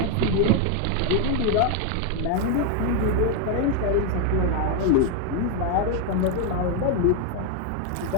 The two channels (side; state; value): both; different; correlation 0.01